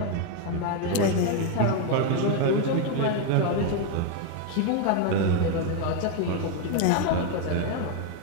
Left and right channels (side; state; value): both; different; correlation 0.01